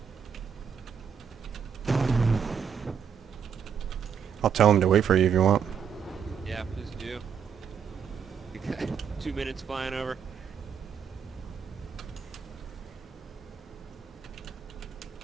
I'll tell him to wait for you if you want. Yeah, please do. 2 minutes flying over.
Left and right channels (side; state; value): left; quieter; 7.3 dB